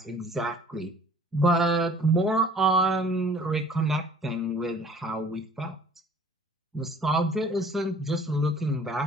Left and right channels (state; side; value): normal; both; correlation 0.52